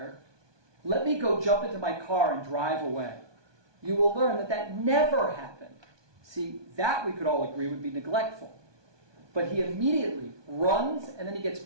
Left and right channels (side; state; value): left; late; 1.2 ms